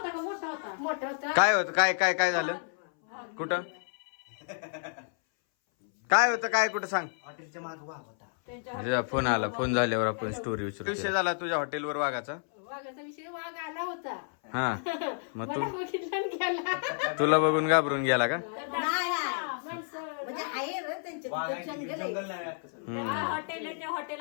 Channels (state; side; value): silent; right; 57 dB below the other